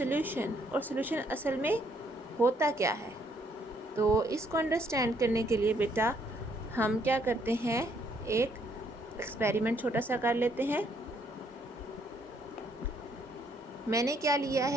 और सॉल्यूशन असल में होता क्या है। तो इसको अंडरस्टैंड करने के लिए बेटा हम क्या करते हैं, एक एक्सपेरिमेंट छोटा सा कर लेते हैं। मैंने क्या लिया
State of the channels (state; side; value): normal; both; correlation 0.69